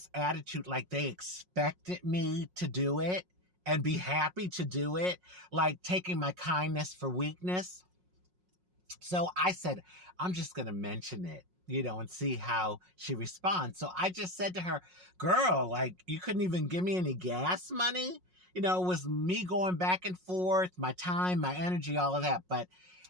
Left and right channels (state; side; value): late; left; 5.5 ms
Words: attitude, like they expected me to do it and be happy to do it, like taking my kindness for weakness. So I said, I'm just going to mention it, and see how she responds. So I just said to her, girl, you couldn't even give me any gas money? It was me going back and forth, my time, my energy, all of that. But